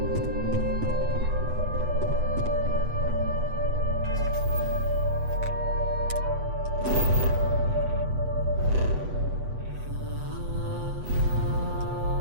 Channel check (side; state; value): left; late; 8.0 ms